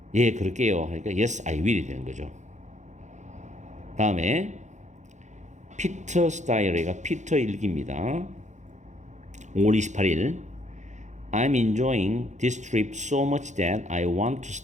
예 그럴게요 하니까 yes I will이 되는 거죠. 다음에 피터 스타일이가 피터 일기입니다. 5월 28일 I'm enjoying this trip so much that I want to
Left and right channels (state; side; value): late; left; 0.34 ms